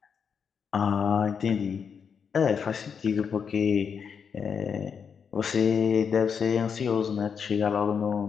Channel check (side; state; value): right; quieter; 6.7 dB